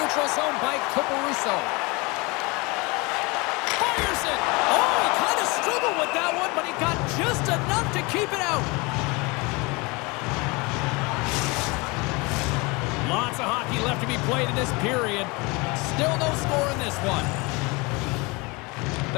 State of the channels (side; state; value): right; quieter; 26.4 dB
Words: neutral zone by Caruso. Fires it! Oh, he kind of struggled with that one, but he got just enough to keep it out. Lots of hockey left to be played in this period. Still no score in this one.